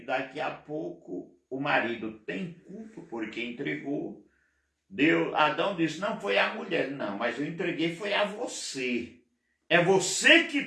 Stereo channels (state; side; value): identical; both; correlation 1.00